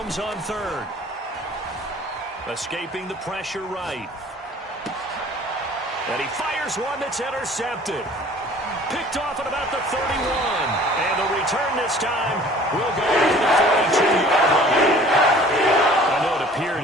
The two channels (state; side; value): normal; both; correlation 0.50